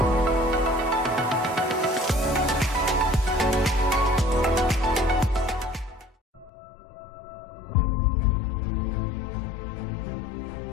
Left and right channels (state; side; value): drops out; right; at 6.5 s